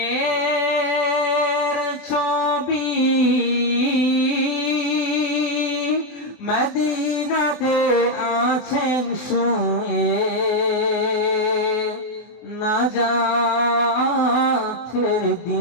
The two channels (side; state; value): right; late; 24 ms